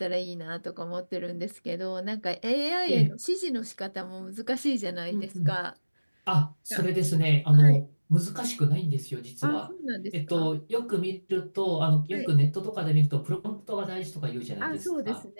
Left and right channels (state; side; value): inverted; both; correlation -1.00